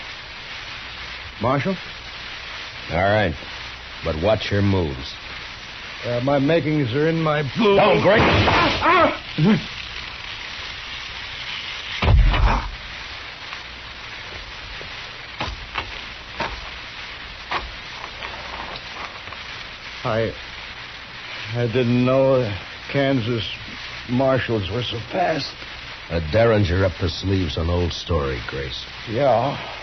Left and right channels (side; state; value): both; identical; correlation 1.00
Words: Marshal? All right. But watch your moves. My makings are in my... Don't, Grace! I didn't know the Kansas marshals were so fast. A derringer up the sleeves, an old story, Grace. Yeah,